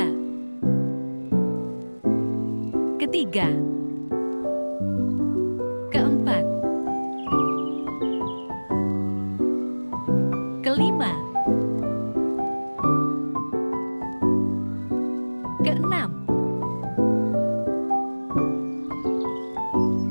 Ketiga. Keempat. Kelima. Keenam.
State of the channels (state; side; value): inverted; both; correlation -1.00